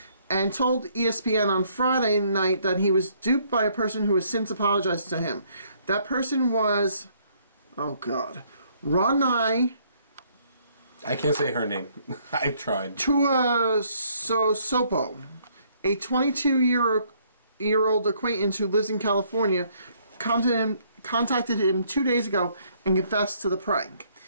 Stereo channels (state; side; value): inverted; both; correlation -0.66